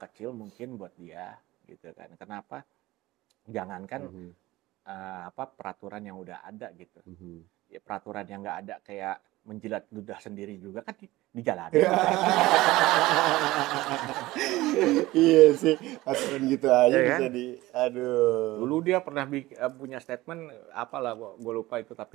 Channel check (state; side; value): quieter; left; 18.3 dB